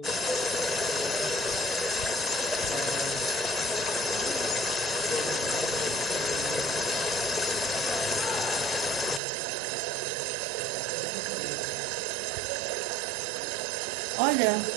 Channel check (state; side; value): drops out; left; at 9.2 s